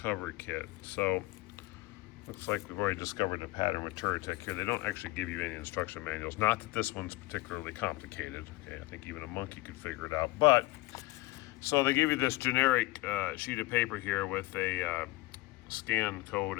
kit. So looks like we've already discovered a pattern with Touratech here. They don't actually give you any instruction manuals. Not that this one's particularly complicated. Okay, I think even a monkey could figure it out. But, so they give you this generic sheet of paper here with a scan code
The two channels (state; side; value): quieter; right; 20.3 dB